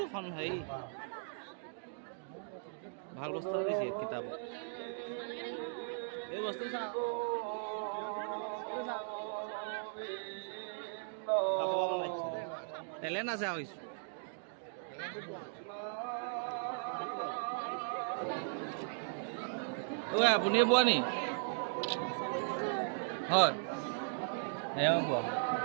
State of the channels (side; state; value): left; silent; digital silence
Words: কম হেৰি ভাল বস্তু দিছে কিতাপ এই বস্তু টেলেণ্ট আছে আৰু কিছু আপুনি বোৱা নি হয় এয়া বোৱা